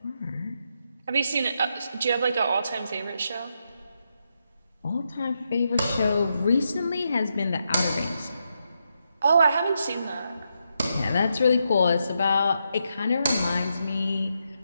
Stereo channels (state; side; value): inverted; both; correlation -0.82